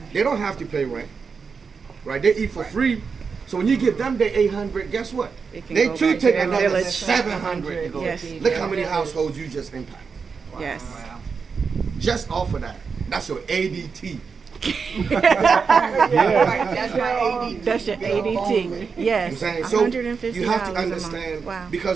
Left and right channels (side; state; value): left; quieter; 5.4 dB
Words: they don't have to pay rent, right? They eat for free. So when you give them the 800, guess what? It can They go too back to take their another village. 700 to go. Yes. Look how many households you just impact. Yes. Just off of that. That's your ADT. Right. That's my ADT. That's your ADT. I'm Yes. saying, so $150 you have to a month. understand Wow.